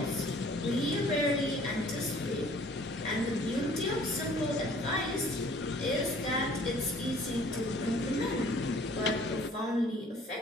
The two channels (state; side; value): normal; both; correlation 0.54